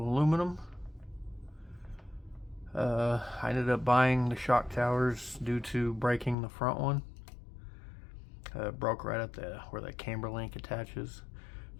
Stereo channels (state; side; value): drops out; right; at 6.4 s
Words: I ended up buying the shock towers due to breaking the front one. It broke right at where that camber link attaches.